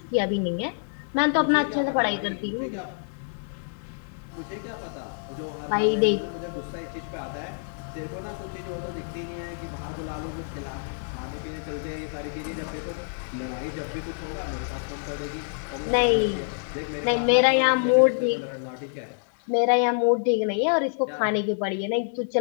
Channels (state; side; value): silent; right; digital silence